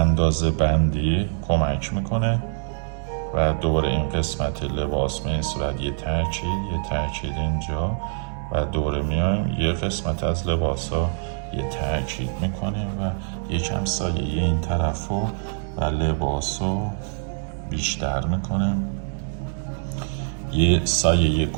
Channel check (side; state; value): left; silent; 62 dB below the other